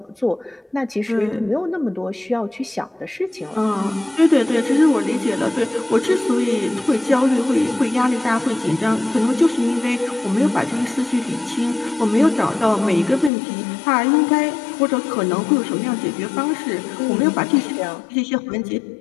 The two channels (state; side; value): drops out; right; at 13.3 s